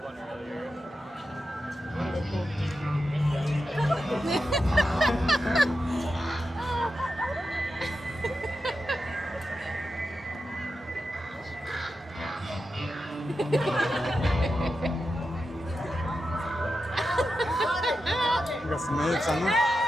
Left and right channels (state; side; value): normal; both; correlation 0.90